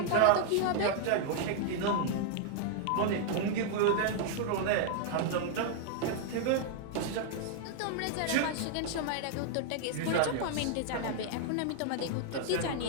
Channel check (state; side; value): different; both; correlation -0.01